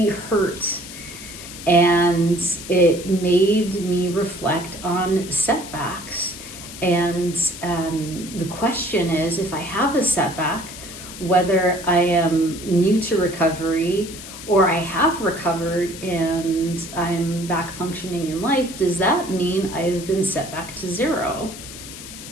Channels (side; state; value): left; noise; hiss, 13 dB below the sound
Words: hurt, and it made me reflect on setbacks. And the question is, if I have a setback, whether I am new to recovery or I have recovered and I'm back functioning in life, does that mean I've been set back to zero?